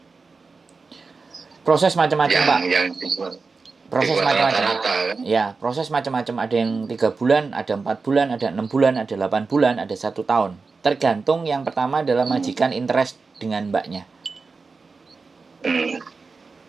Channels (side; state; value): left; quieter; 4.4 dB